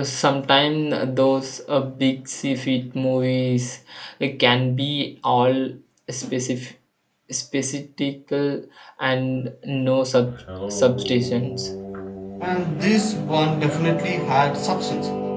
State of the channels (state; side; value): identical; both; correlation 1.00